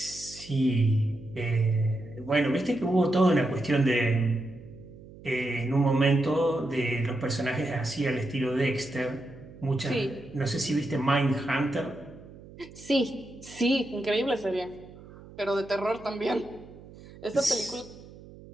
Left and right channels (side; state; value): right; noise; hum, 19 dB below the sound